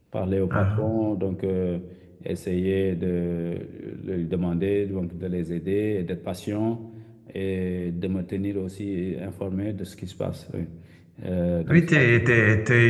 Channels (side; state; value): both; identical; correlation 1.00